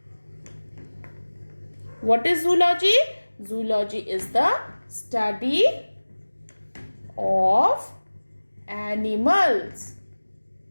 What is zoology? Zoology is the study of animals.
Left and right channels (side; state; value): both; inverted; correlation -1.00